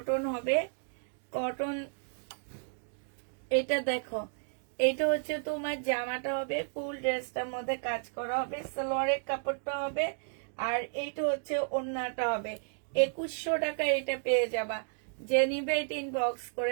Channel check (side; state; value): left; silent; digital silence